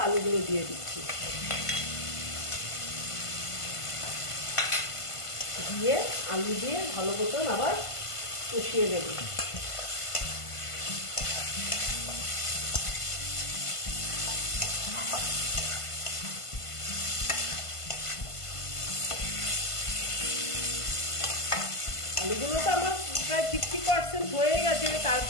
আলুগুলো দিয়ে দিচ্ছি, দিয়ে আলু দিয়ে ভালো মতন আবার কষিয়ে নেব। আলুগুলো তো আমার প্রায় 50% হয়ে গেছে।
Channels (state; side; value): late; right; 1.5 ms